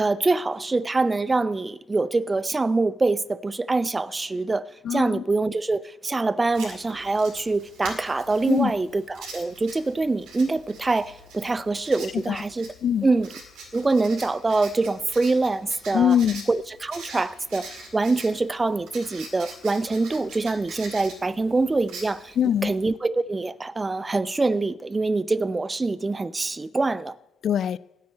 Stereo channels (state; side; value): normal; both; correlation 0.91